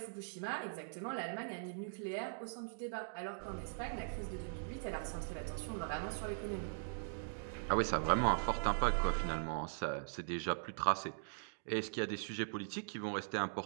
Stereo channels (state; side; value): silent; left; digital silence